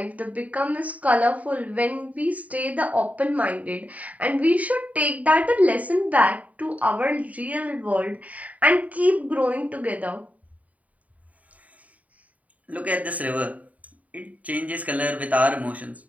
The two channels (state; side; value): late; left; 0.071 ms